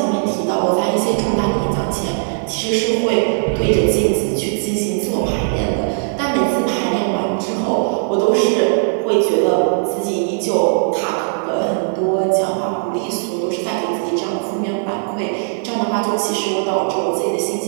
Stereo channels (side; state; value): left; silent; digital silence